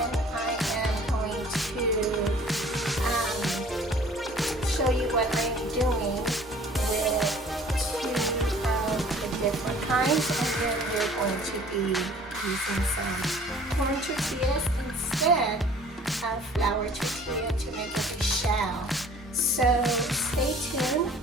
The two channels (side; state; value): both; normal; correlation 0.51